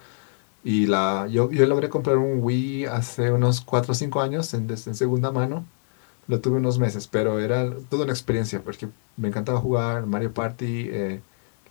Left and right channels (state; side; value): silent; right; 63 dB below the other